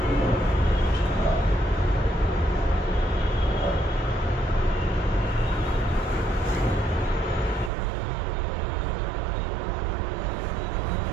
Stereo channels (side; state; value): left; drops out; at 7.7 s